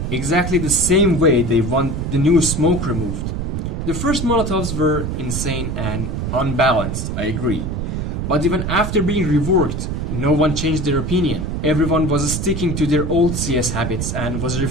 Exactly the same way they want the new smoke removed. The first Molotovs were insane and unbalanced, I agree. But even after being reworked, no one changed their opinion. Everyone was sticking to their old CS habits and was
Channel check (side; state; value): right; noise; rumble, 2 dB below the sound